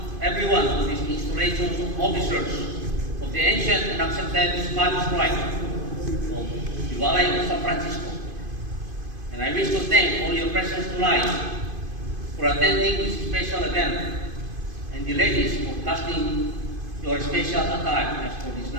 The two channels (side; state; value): left; late; 2.5 ms